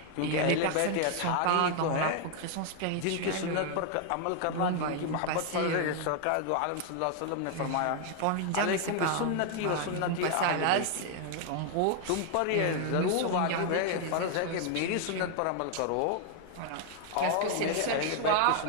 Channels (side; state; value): both; different; correlation 0.01